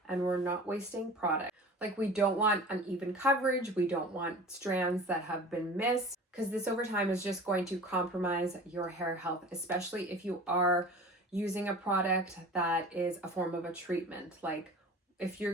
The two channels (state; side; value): normal; both; correlation 0.39